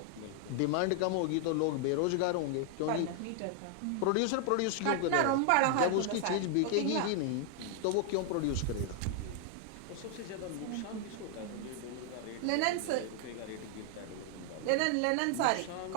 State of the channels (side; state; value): both; different; correlation 0.00